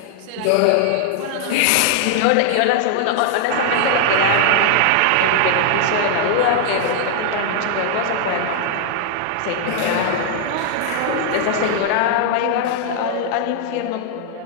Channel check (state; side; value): different; both; correlation 0.00